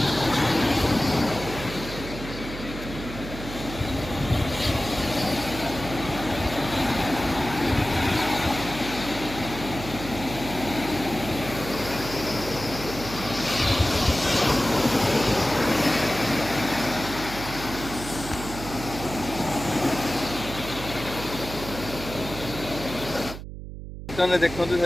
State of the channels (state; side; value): noise; right; hum, 10 dB below the sound